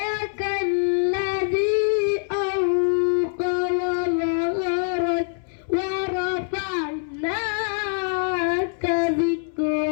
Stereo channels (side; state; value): right; silent; 63 dB below the other